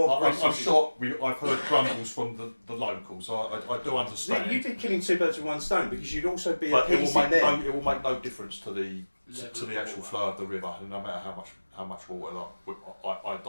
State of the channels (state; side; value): inverted; both; correlation -1.00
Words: I'm sure I've heard grumbles from the locals. I do understand. You'd be killing 2 birds with 1 stone because you'd also be But it appeasing them. will make no difference to the actual flow of the river, no matter how much water I